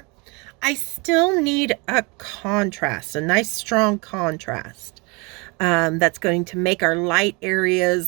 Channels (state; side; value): quieter; left; 28.9 dB